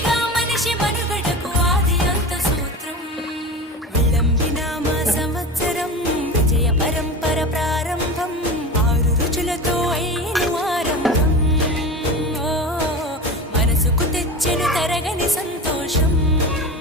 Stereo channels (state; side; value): normal; both; correlation 0.29